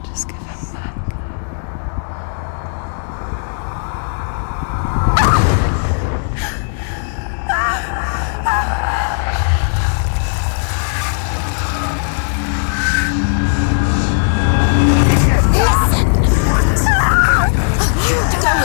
Just give him back.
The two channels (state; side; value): silent; right; digital silence